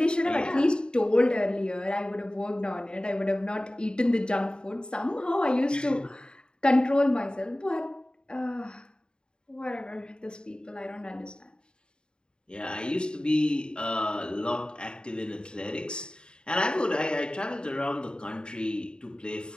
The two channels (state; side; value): late; right; 0.050 ms